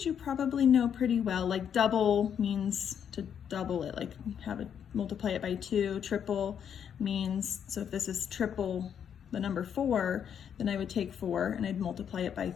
you probably know pretty well. Like double means to double it, like multiply it by 2. Triple means, so if this is triple the number 4, then I would take 4 and I'd multiply it by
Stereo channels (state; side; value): quieter; right; 8.3 dB